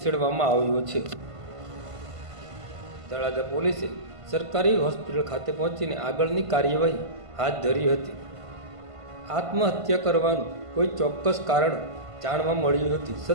આવ્યો છે. તળાજા પોલીસે સરકારી હોસ્પિટલ ખાતે પહોંચીને આગળની કાર્યવાહી હાથ ધરી હતી. આત્મહત્યા કરવાનું કોઈ ચોક્કસ કારણ જાણવા મળ્યું નથી.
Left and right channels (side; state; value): left; late; 1.5 ms